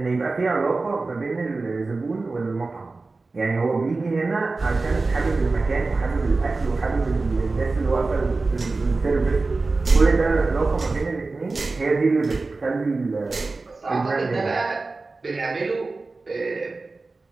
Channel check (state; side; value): quieter; left; 3.7 dB